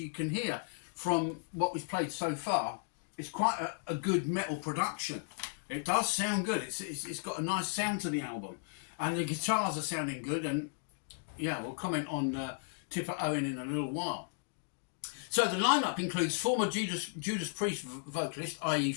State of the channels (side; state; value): right; silent; digital silence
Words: can hear from what we've played so far, it's quite a good metal production. It does sound good. It's got a nice sound to the album. And the guitars are sounding good. And yeah, we'll comment on Tipper Owen in a little while. So the lineup includes former Judas Priest vocalist, i.e.